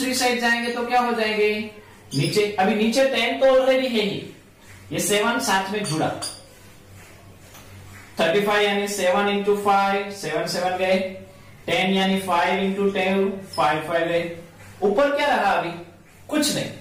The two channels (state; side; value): identical; both; correlation 1.00